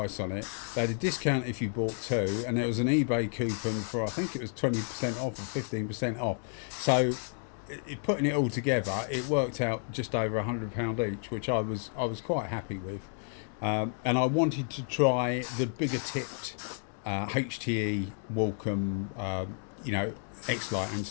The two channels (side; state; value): right; silent; 57 dB below the other